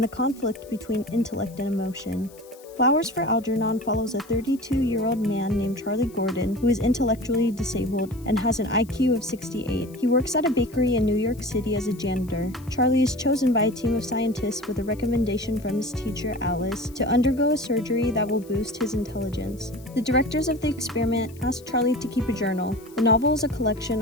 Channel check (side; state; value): left; noise; hiss, 24 dB below the sound